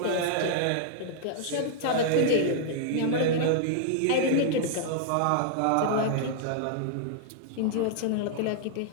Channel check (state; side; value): different; both; correlation -0.01